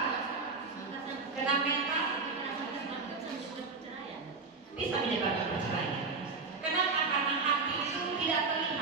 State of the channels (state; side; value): quieter; left; 4.3 dB